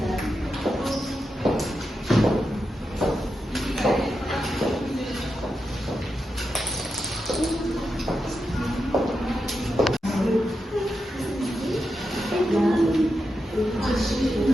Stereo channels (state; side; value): normal; both; correlation 0.87